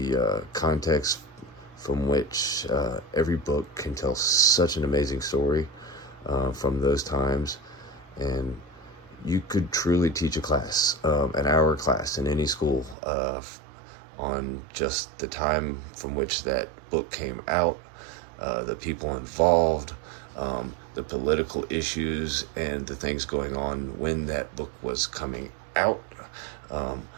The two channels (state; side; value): drops out; left; at 13.0 s